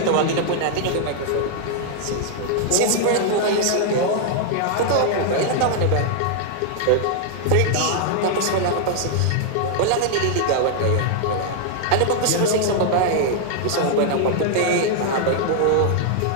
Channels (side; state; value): both; different; correlation -0.01